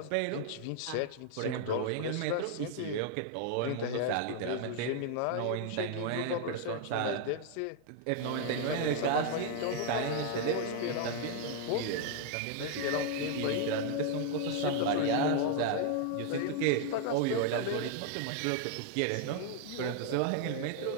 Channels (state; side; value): different; both; correlation 0.00